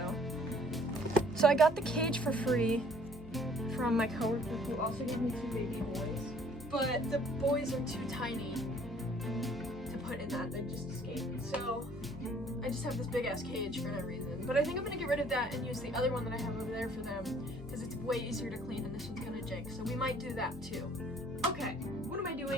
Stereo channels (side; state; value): left; noise; hum, 15 dB below the sound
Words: So I got the cage for free from my coworker who also gave me 2 baby boys. But the boys are too tiny to put in that, they just escaped. So I just have this big ass cage for no reason. But I think I'm gonna get rid of that and use the other one that I have over there for them because it's way easier to clean and this one's gonna jank. So we might do that too. Okay, what am I